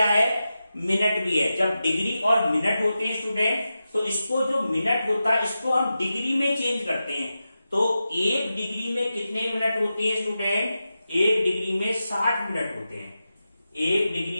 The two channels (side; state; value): both; inverted; correlation -0.91